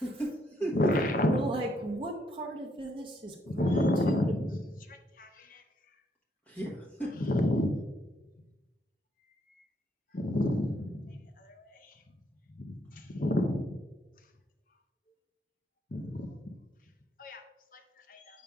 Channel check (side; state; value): both; normal; correlation 0.73